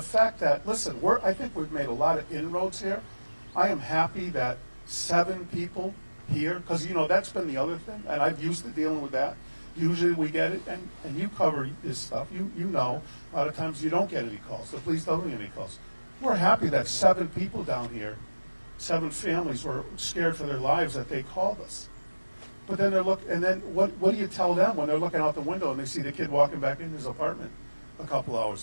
that, listen, I think we've made a lot of inroads here. I am happy that 7 people here, because that's been the other thing, and I've used to dealing with that. Usually we get it, and you cover this stuff. You know, a lot of times you don't get any calls. The police don't get any calls. We're happy that 7 people down here. 7 families were scared for their lives that they called us. But then what do you tell them when they're looking out the window and they see the kid walking back in his apartment a couple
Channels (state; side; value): inverted; both; correlation -1.00